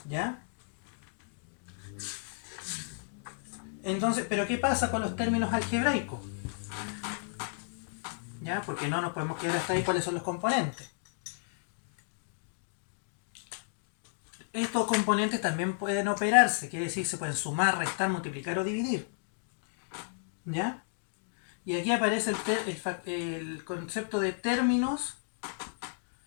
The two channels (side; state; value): right; silent; digital silence